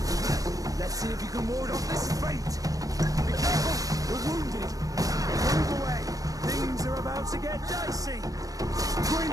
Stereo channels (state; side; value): late; left; 0.17 ms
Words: Let's see if you can ward off this feint. Be careful, we're wounded. Move away. Things are about to get dicey.